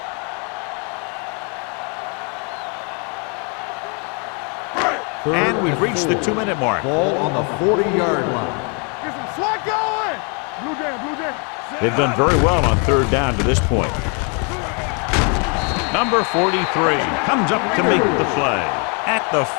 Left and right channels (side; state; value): right; quieter; 36.1 dB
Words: And we've reached the 2-minute mark. Ball on the 40-yard line. Get some slack going. Blue jam. They've done very well on 3rd down to this point. Number 43 comes up to make the play. At the